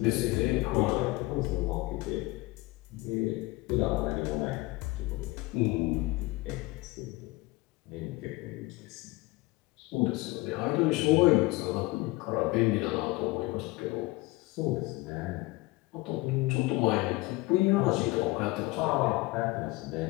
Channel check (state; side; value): quieter; right; 21.5 dB